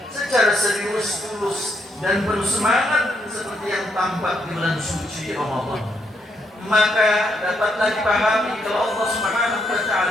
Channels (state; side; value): normal; both; correlation 0.76